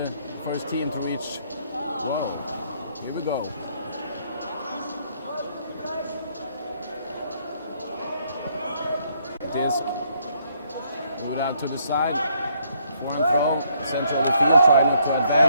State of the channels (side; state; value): both; inverted; correlation -0.70